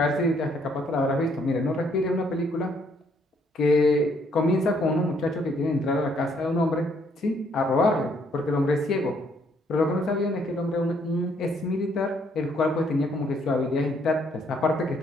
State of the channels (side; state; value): both; normal; correlation 0.68